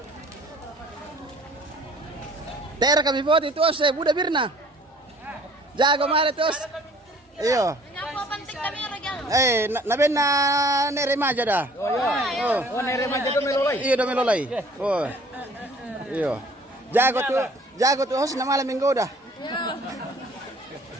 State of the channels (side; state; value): both; normal; correlation 0.54